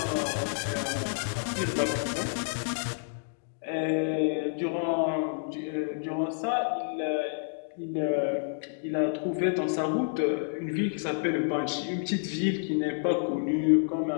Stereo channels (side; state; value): right; silent; digital silence